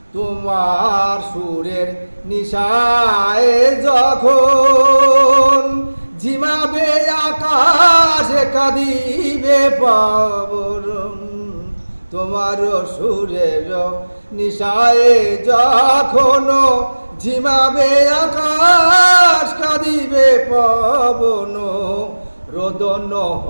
তোমার সুরের নিশায় যখন ঝিমাবে আকাশ, কাঁদিবে পবন। তোমার সুরের নিশায় যখন ঝিমাবে আকাশ, কাঁদিবে পবন। রোদন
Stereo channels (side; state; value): both; inverted; correlation -1.00